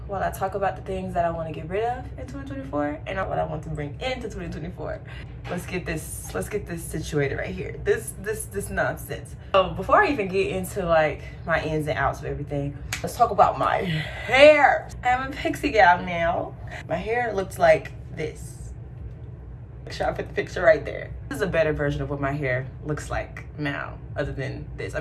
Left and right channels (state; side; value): identical; both; correlation 1.00